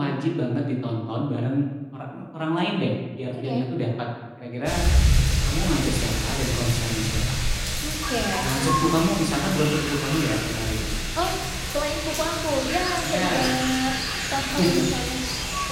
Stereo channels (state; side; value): identical; both; correlation 1.00